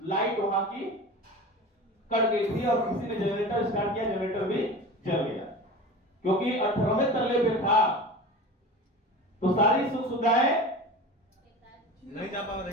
लाइट वहां की कट गई थी, और किसी ने जनरेटर स्टार्ट किया, जनरेटर भी जल गया। क्योंकि 18वें तल्ले पे था, तो सारी सुख सुविधाएं नहीं जा पा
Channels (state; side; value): normal; both; correlation 0.33